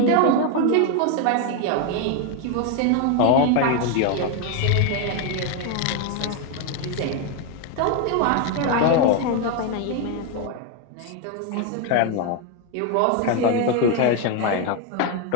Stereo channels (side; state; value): both; different; correlation 0.01